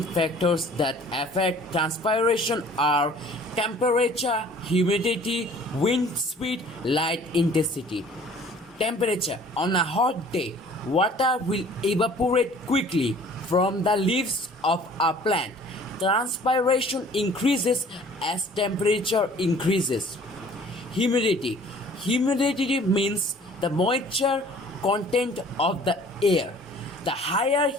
factors that affect transpiration are temperature, humidity, wind speed, light intensity. Temperature. On a hot day, water will evaporate quickly from the leaves of a plant. Transpiration increases as temperature increases. Humidity. Humidity means the moisture content of the air. The higher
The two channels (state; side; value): normal; both; correlation 0.51